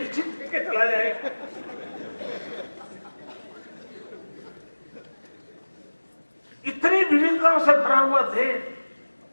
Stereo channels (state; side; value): inverted; both; correlation -1.00